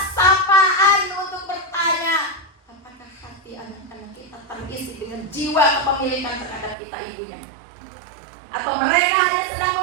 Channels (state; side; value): drops out; left; at 6.8 s